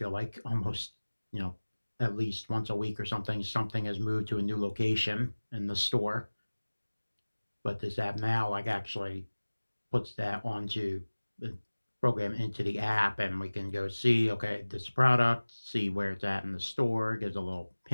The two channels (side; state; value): both; inverted; correlation -1.00